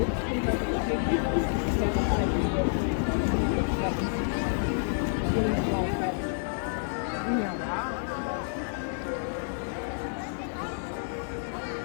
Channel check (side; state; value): right; silent; digital silence